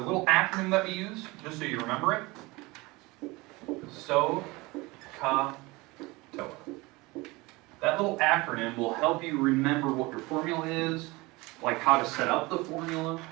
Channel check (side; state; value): left; quieter; 23.1 dB